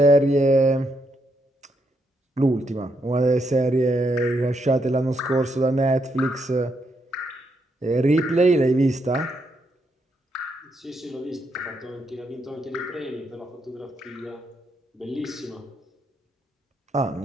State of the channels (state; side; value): normal; both; correlation 0.78